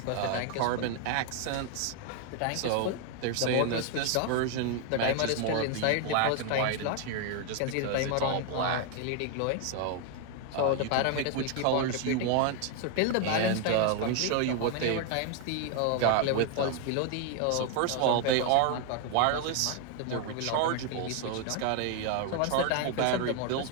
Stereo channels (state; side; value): different; both; correlation 0.01